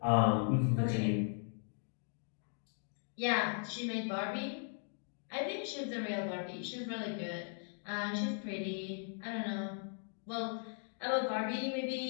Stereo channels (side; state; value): right; silent; 52 dB below the other